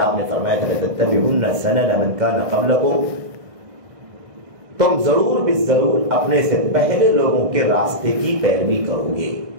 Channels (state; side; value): late; left; 1.6 ms